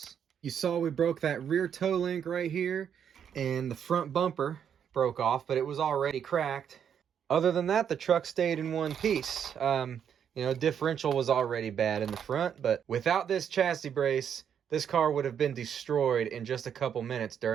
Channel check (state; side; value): quieter; left; 8.3 dB